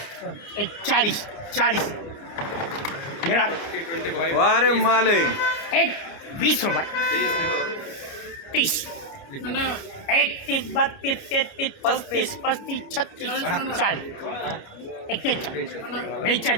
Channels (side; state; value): right; late; 29 ms